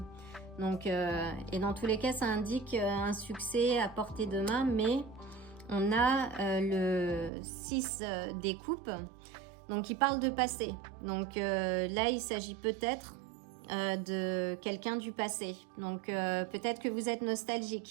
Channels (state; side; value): drops out; left; at 7.3 s